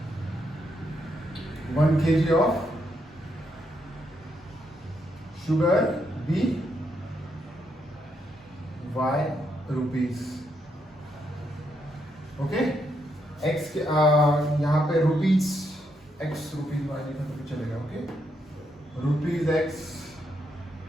1 kg of sugar be y rupees, okay. X के यहाँ pay rupees x rupees Y लिखा तो चलेगा, okay, rupees X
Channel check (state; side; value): normal; both; correlation 0.78